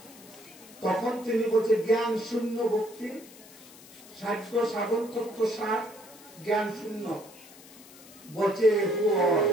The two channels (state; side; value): noise; left; hiss, 20 dB below the sound